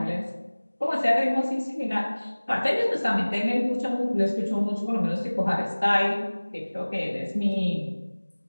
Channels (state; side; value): inverted; both; correlation -1.00